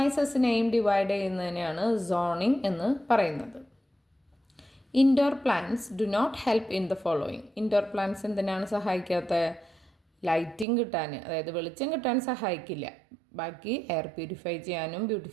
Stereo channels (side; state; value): left; drops out; at 10.7 s